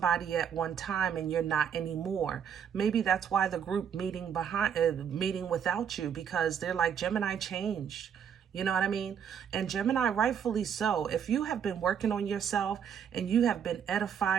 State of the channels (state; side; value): quieter; left; 8.0 dB